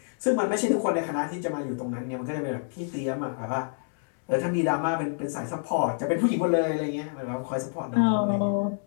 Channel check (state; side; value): silent; right; digital silence